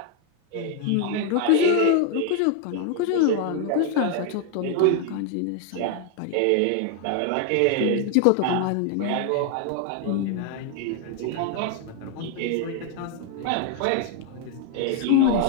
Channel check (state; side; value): different; both; correlation 0.01